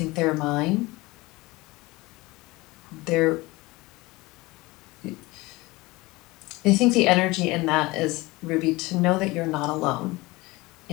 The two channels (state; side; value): quieter; right; 21.7 dB